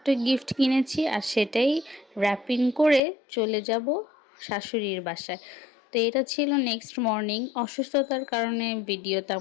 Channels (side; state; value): right; drops out; at 3.0 s